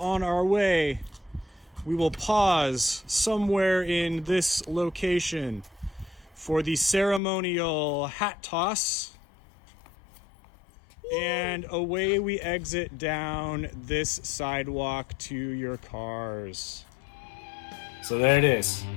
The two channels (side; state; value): right; drops out; at 7.2 s